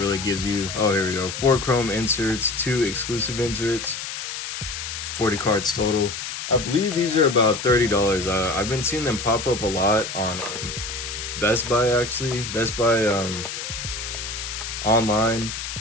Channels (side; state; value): left; noise; hiss, 6 dB below the sound